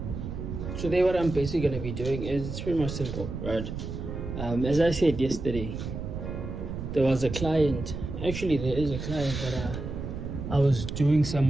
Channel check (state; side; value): noise; right; rumble, 6 dB below the sound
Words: today what I'm basically gonna be doing is it's pretty much simple, right? As I said yesterday, there was a client. Actually, there is a client that I was doing